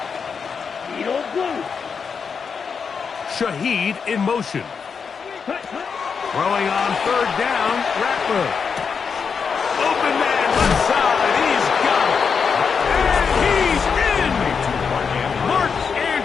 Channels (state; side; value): quieter; right; 6.0 dB